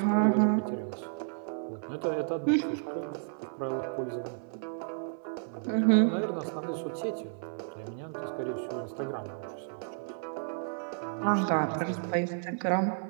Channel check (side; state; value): left; silent; 57 dB below the other